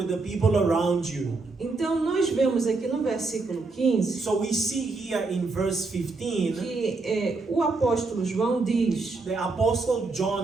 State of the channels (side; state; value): left; quieter; 3.8 dB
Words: the people around you. Então, nós vemos aqui no versículo 15 So we see here in verse 15, que o apóstolo João diz: the Apostle